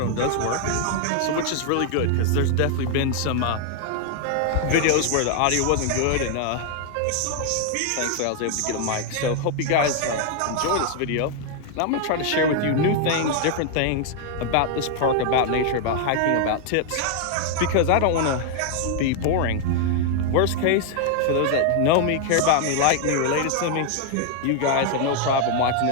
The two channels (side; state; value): both; different; correlation 0.00